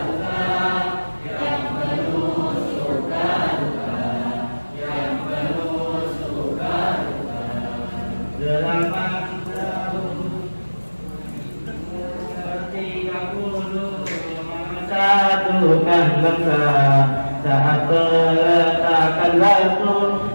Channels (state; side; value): inverted; both; correlation -1.00